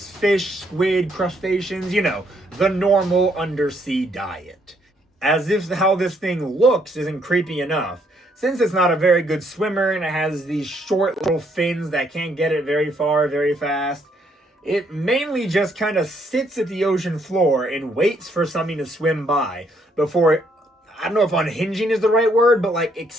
squid, crustaceans, the normal undersea diet. As if how this thing looks isn't creepy enough. Since it's not a very good swimmer and it has these short little fins that can't get it very far very fast, it mainly just kind of sits at the ocean floor and waits for something to swim by before, I don't know if unhinging is the right word, but like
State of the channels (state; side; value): normal; both; correlation 0.71